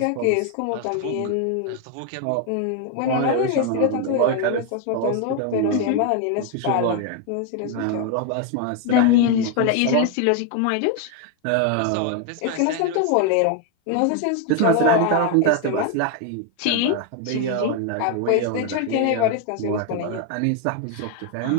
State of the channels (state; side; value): different; both; correlation 0.01